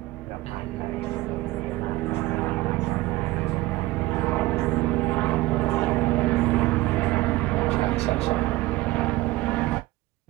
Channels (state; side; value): quieter; left; 18.6 dB